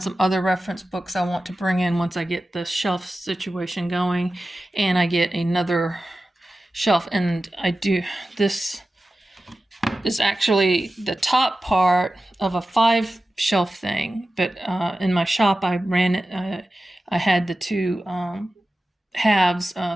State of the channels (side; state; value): both; normal; correlation 0.94